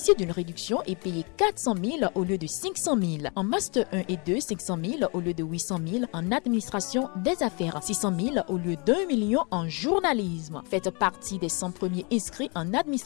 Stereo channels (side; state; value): right; quieter; 32.6 dB